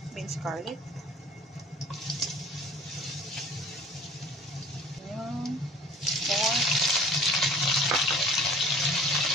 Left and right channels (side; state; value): both; normal; correlation 0.48